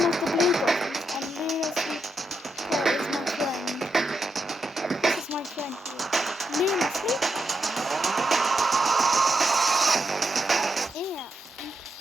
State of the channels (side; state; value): both; normal; correlation 0.84